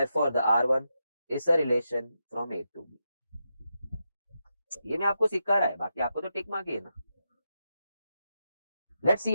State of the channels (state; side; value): inverted; both; correlation -0.85